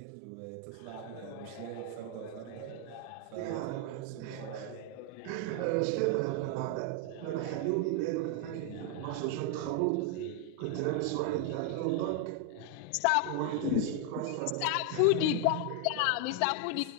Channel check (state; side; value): different; both; correlation 0.01